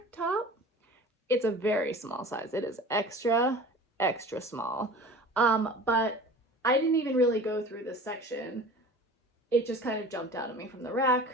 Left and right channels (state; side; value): normal; both; correlation 0.40